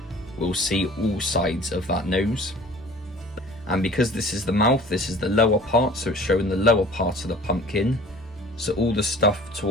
we'll see all sides of that nose. And because this is the mouth, this is the lower part, so it's showing the lower part of the pumpkin. So all the stuff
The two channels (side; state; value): both; normal; correlation 0.46